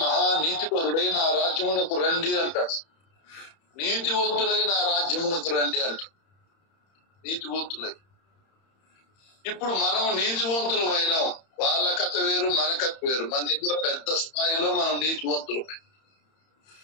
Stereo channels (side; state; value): right; late; 31 ms